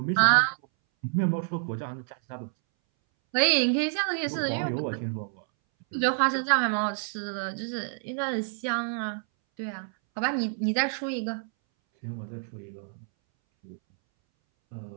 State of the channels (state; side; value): silent; left; 59 dB below the other